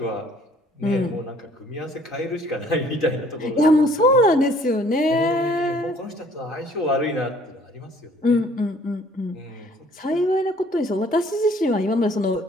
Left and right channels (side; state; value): both; normal; correlation 0.58